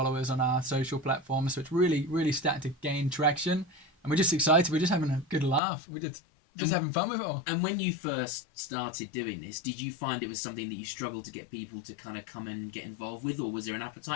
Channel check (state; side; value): drops out; right; at 5.6 s